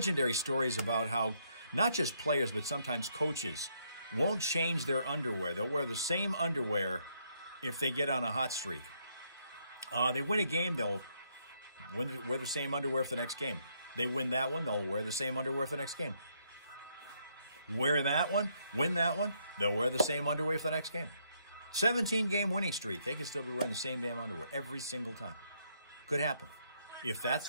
stories about how not just players, but sometimes coaches won't change their underwear. They'll wear the same underwear if they get on a hot streak. They win a game, they'll wear the same underwear for the next game. They win that one, they'll wear the same underwear for the next game. Wear that one, win that one, they'll wear the same underwear for the next game. 17-game winning streak. They can still be wearing the same damn underwear every single time. Could happen. If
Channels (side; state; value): both; inverted; correlation -0.73